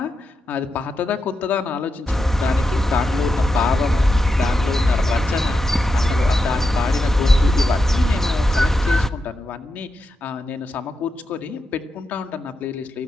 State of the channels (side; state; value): both; normal; correlation 0.87